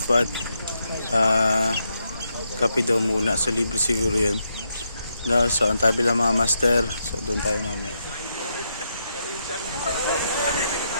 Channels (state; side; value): inverted; both; correlation -0.81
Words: Kape daw muna. So libre siguro yun. No, so ang tabi lang mga master. So doon tayo mamaya.